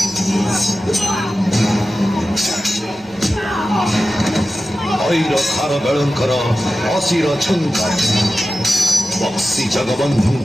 ऐर खार बेळंकर असिर छंकार बक्सी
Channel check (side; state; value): left; noise; rumble, 28 dB below the sound